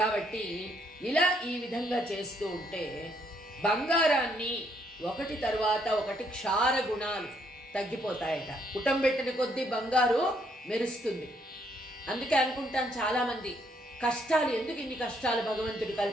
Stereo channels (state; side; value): normal; both; correlation 0.71